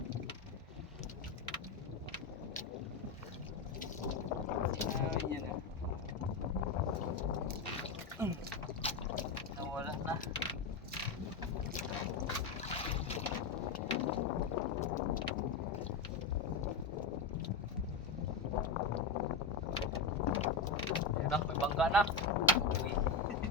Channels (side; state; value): right; quieter; 4.4 dB